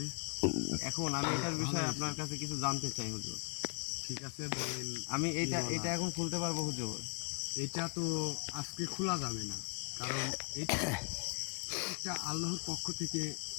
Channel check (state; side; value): quieter; right; 35.2 dB